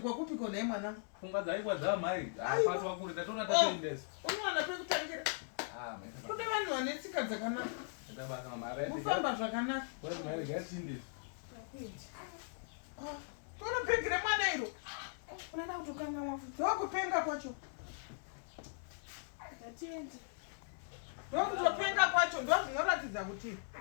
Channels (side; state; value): right; silent; digital silence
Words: kona mwanangu? Pfungwa dzaikwa dzamai. Apatwa kuri tatona tatoendesa. Unowana pekutangira. Kude vanhu vane tsika dzakanaka. Ndabaka mama right. Kufamba zvakanaka. Kwai mai gatindi. Toropengere mwana iro. Unaenda kutokanga mafuta. Ndokupenga kwacho. Tatende. Ndokutopenga kwacho ndo zvinoratidza kuti